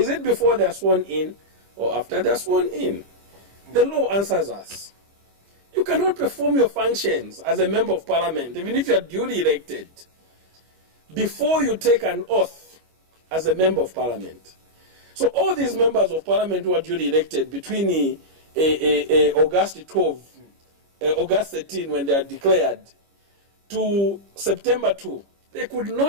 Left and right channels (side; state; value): left; late; 25 ms